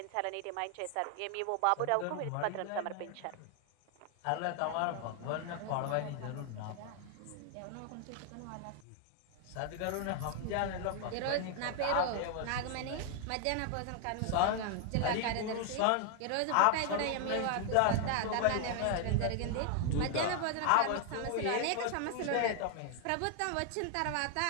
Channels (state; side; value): different; both; correlation 0.00